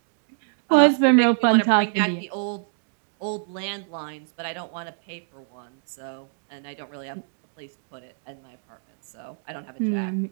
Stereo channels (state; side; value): silent; left; digital silence